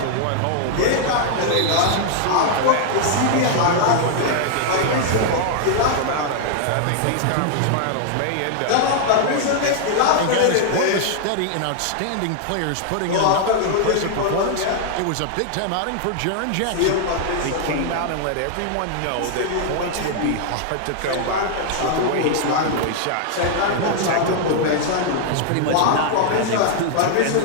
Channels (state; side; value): different; both; correlation -0.01